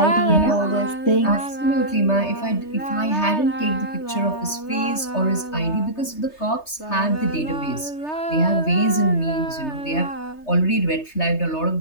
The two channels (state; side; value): late; right; 3.3 ms